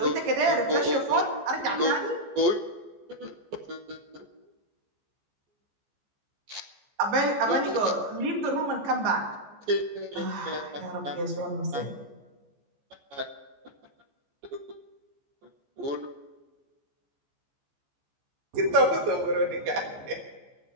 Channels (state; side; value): late; left; 14 ms